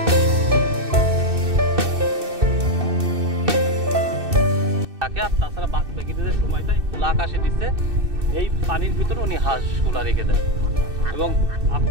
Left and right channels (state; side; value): late; left; 2.6 ms